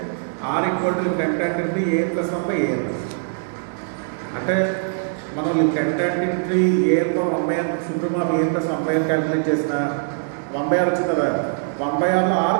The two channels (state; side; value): silent; left; 56 dB below the other